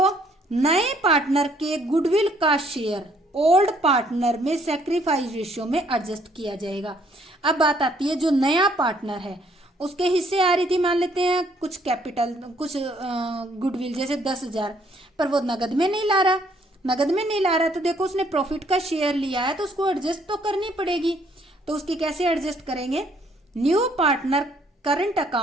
नए पार्टनर के गुडविल का शेयर ओल्ड पार्टनर में सैक्रिफाइस रेशियो में एडजस्ट किया जाएगा। अब बात आती है जो नया पार्टनर है उसके हिस्से आ रही थी, मान लेते हैं कुछ कैपिटल, कुछ गुडविल जैसे 10,000, पर वो नगद में नहीं ला रहा, नगद में नहीं ला रहा, तो देखो उसने प्रॉफिट का शेयर लिया है तो उसको एडजस्ट तो करनी पड़ेगी। तो उसकी कैसे एडजस्ट करेंगे, new partner current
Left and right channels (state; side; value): normal; both; correlation 0.65